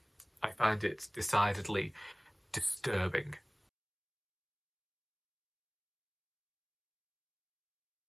I find it decidedly disturbing.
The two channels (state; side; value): identical; both; correlation 1.00